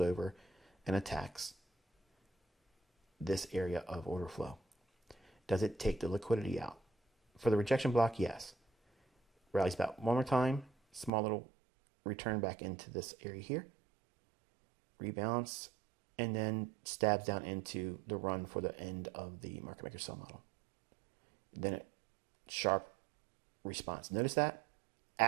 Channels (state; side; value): drops out; left; at 11.1 s